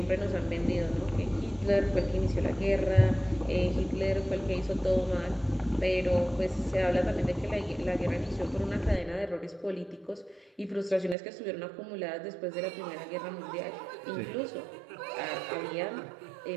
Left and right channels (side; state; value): left; drops out; at 11.2 s